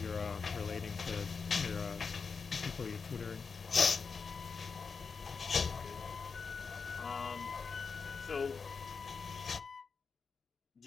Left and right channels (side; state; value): right; quieter; 5.2 dB